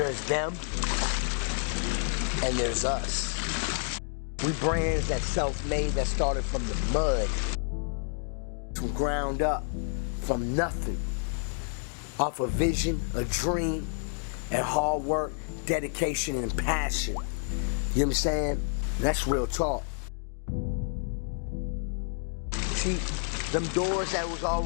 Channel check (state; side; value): silent; right; 58 dB below the other